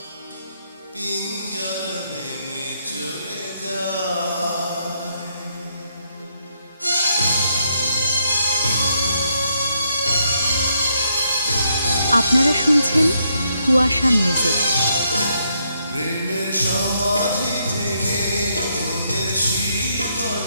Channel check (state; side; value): inverted; both; correlation -0.76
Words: পিঞ্জর ভেঙে চলে যায়। আপনারা শুনছেন কুয়াশা মিউজিক। প্রেমের সমাধি ভেঙে মনের শিকল